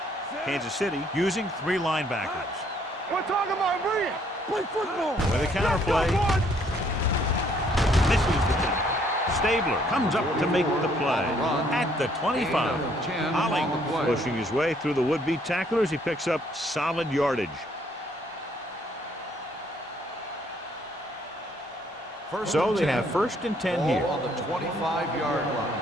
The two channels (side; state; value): both; normal; correlation 0.66